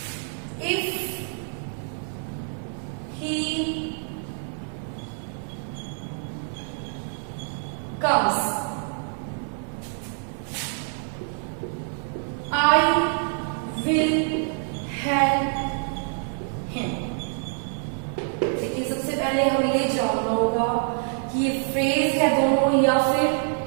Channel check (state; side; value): silent; left; 61 dB below the other